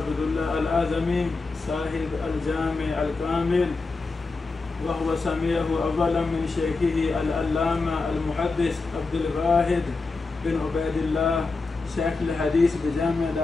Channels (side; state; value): right; quieter; 3.8 dB